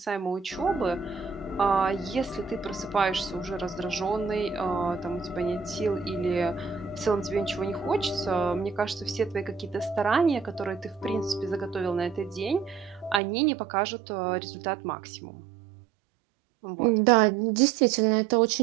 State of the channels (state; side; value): drops out; left; at 13.2 s